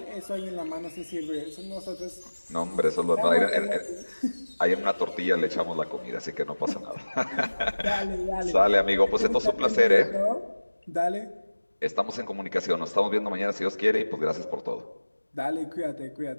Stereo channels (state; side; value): inverted; both; correlation -1.00